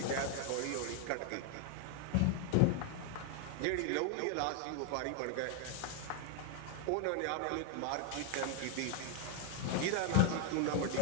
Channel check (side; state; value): both; different; correlation 0.00